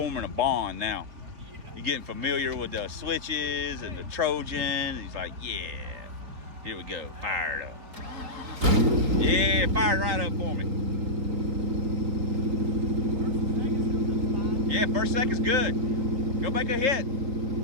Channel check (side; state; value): left; late; 4.0 ms